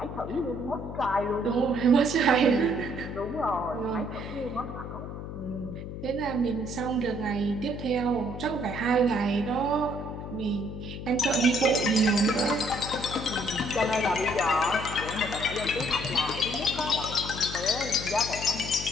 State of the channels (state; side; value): noise; left; hum, 8 dB below the sound